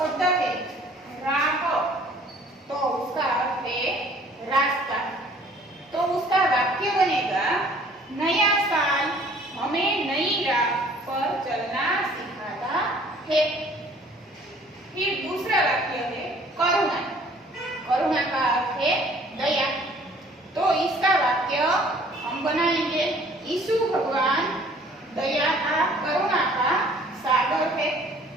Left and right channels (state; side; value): normal; both; correlation 0.55